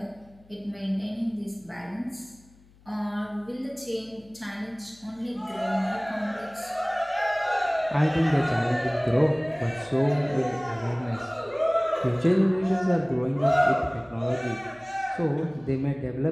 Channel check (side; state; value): left; noise; hum, 28 dB below the sound